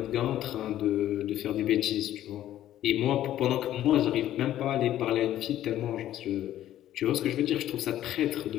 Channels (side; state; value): right; quieter; 12.6 dB